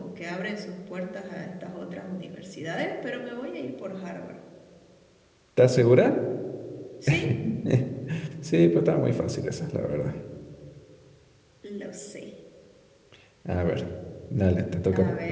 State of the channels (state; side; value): identical; both; correlation 1.00